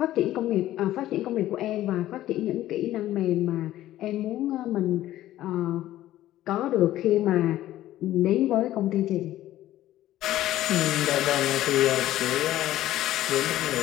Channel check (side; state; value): right; quieter; 14.1 dB